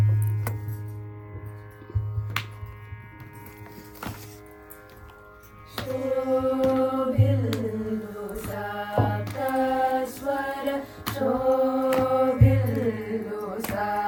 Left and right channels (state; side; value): identical; both; correlation 1.00